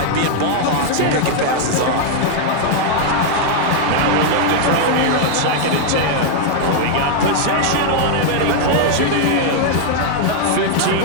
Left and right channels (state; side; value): different; both; correlation 0.00